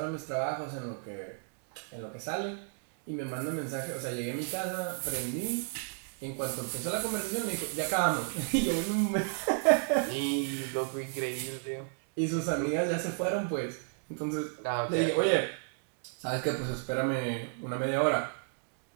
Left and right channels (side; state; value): left; silent; 56 dB below the other